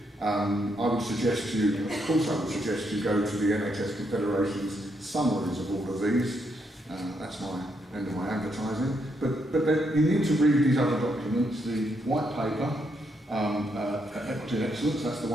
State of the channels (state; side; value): normal; both; correlation 0.77